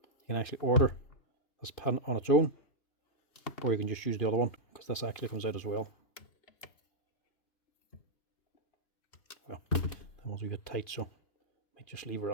You can actually order this pin on its own, or you can just use the other one, because this actually comes out as well. Well, that one's a bit tight, so I might just leave her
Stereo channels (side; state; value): right; late; 2.5 ms